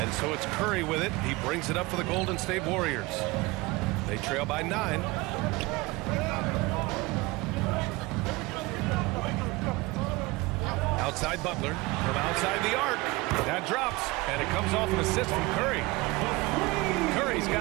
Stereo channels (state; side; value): quieter; left; 22.6 dB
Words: so it's Curry with it. He brings it up for the Golden State Warriors. They trail by 9. Outside Butler. From outside the arc. That drops. And it comes off an assist from Curry. Curry's